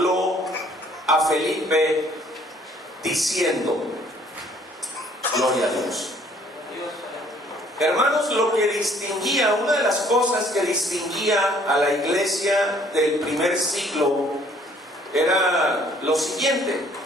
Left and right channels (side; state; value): both; normal; correlation 0.60